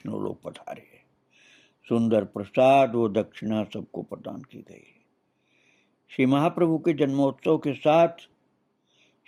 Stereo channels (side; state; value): both; identical; correlation 1.00